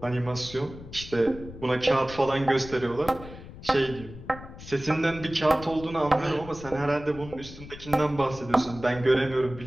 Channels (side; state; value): left; noise; rumble, 15 dB below the sound